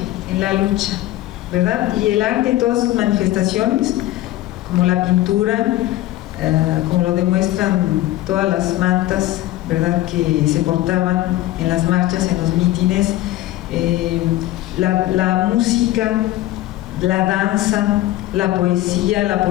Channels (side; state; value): right; quieter; 15.5 dB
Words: en la lucha, ¿verdad? Y el arte en todas sus manifestaciones, como la pintura, como lo demuestran todas las mantas, ¿verdad?, que se portaban en las marchas, en los mítines, la música, la danza, la